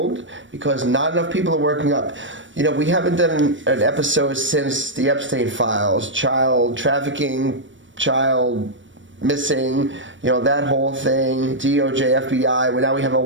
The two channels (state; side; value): late; left; 0.55 ms